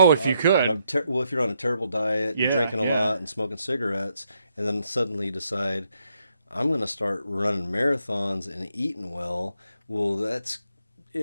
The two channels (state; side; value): inverted; both; correlation -0.78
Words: if you could. If you're on a terrible diet, and drinking a lot and smoking cigarettes, and then suddenly you decide, I'm going to start running marathons and eating well. Well, that's,